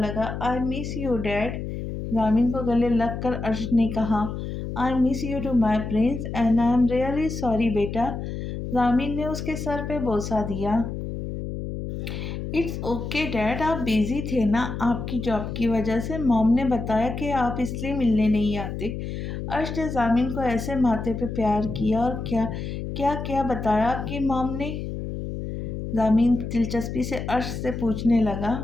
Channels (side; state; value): left; noise; hum, 6 dB below the sound